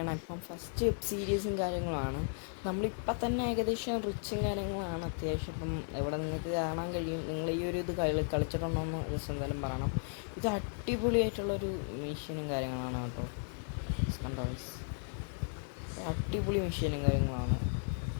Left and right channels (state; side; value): silent; right; 54 dB below the other